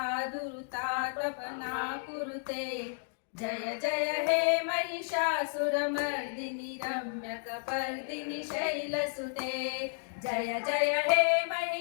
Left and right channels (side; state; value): right; silent; digital silence